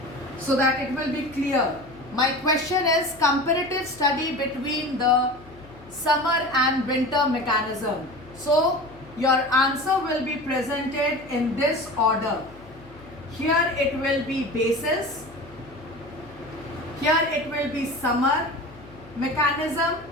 so that it will be clear. My question is comparative study between the summer and winter mechanism. So your answer will be presented in this order. Here it will be basis, here it will be summer mechanism,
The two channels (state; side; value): noise; left; hum, 22 dB below the sound